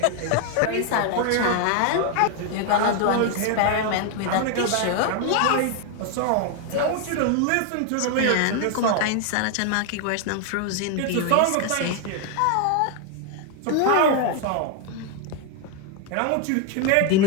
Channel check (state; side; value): different; both; correlation 0.00